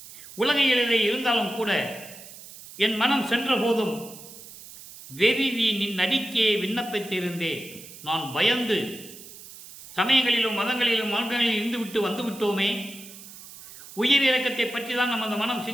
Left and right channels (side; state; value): right; noise; hiss, 17 dB below the sound